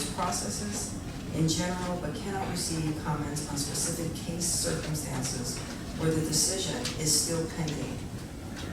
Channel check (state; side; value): identical; both; correlation 1.00